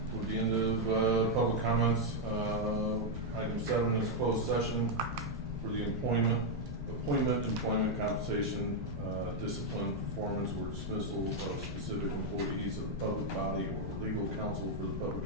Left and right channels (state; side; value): normal; both; correlation 0.00